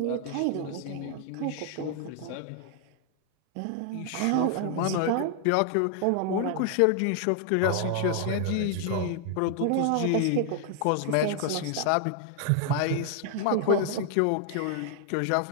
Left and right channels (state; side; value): different; both; correlation 0.00